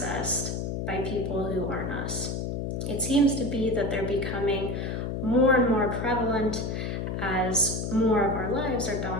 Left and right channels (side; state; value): left; noise; hum, 3 dB below the sound